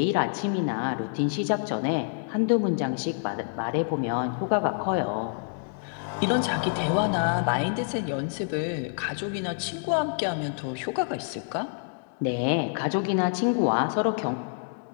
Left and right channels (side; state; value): right; silent; digital silence